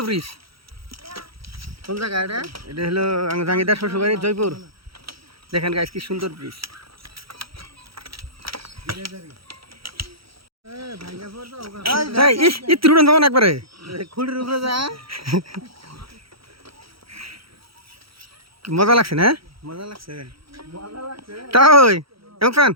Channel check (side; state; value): left; late; 0.75 ms